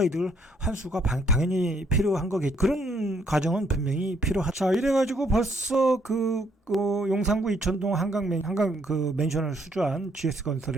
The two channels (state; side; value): normal; both; correlation 0.69